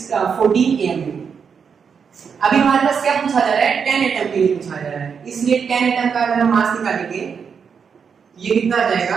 एएमयू। अभी हमारे पास क्या पूछा जा रहा है? 10 एटम के लिए पूछा जा रहा है, इसलिए 10 एटम का अगर हम मास निकालेंगे, ये कितना आ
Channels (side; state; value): left; quieter; 6.4 dB